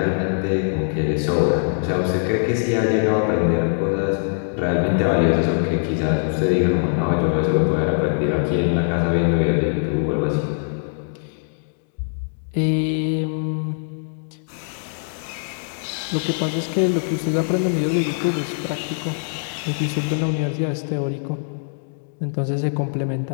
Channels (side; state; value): right; silent; digital silence